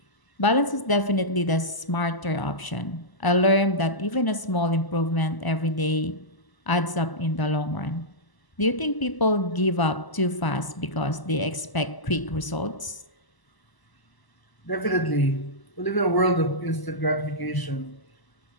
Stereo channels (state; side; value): late; right; 1.0 ms